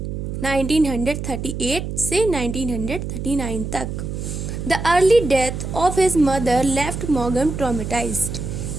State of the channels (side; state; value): right; noise; hum, 5 dB below the sound